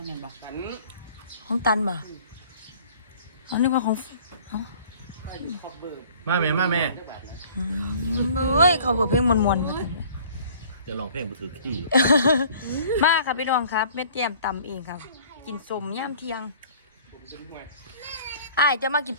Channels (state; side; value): inverted; both; correlation -0.51